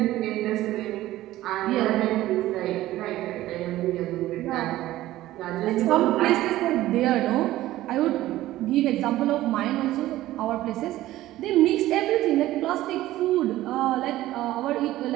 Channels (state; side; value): quieter; left; 15.4 dB